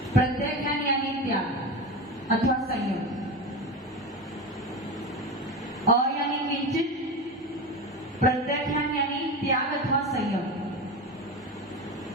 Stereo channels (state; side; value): normal; both; correlation 0.23